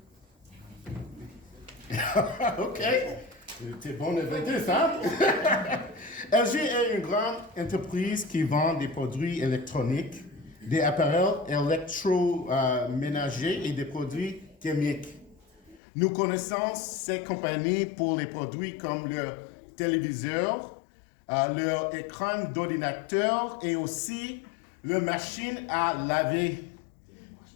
OK. T'es bon invité, ça? LG est une grande entreprise qui vend des produits électroniques, des appareils électroménagers et des produits chimiques. Nous connaissons ces compagnies pour les produits comme le téléviseur, leur écran d'ordinateur et aussi leur machine à laver.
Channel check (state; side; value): drops out; right; at 15.8 s